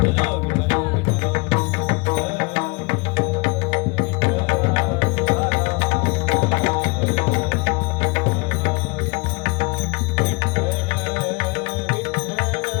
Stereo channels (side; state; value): right; quieter; 28.5 dB